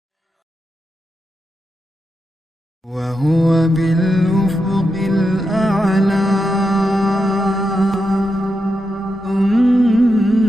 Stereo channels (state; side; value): normal; both; correlation 0.86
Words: وهو بالأفق الأعلى